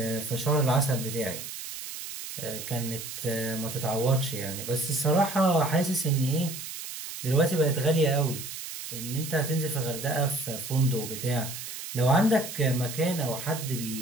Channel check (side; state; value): right; noise; hiss, 9 dB below the sound